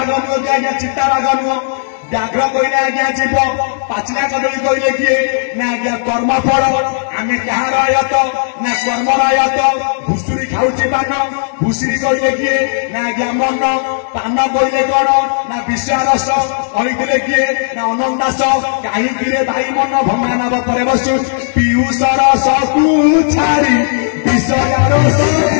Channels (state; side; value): silent; right; digital silence